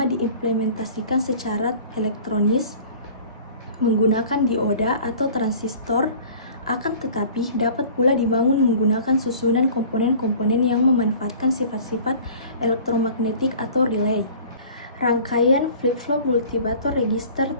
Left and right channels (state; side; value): inverted; both; correlation -0.46